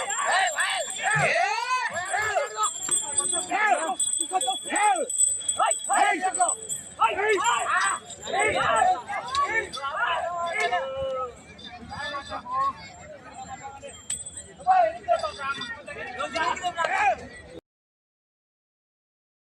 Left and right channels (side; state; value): both; identical; correlation 1.00